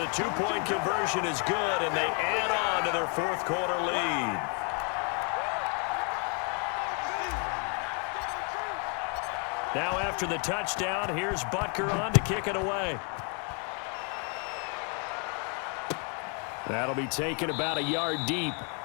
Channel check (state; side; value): quieter; right; 38.0 dB